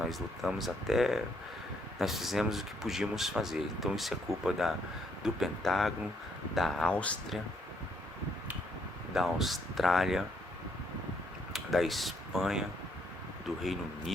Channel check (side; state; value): both; normal; correlation 0.72